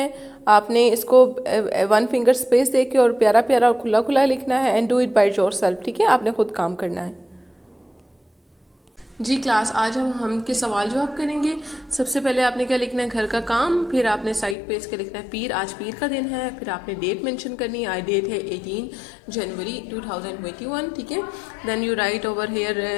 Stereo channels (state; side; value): drops out; right; at 14.6 s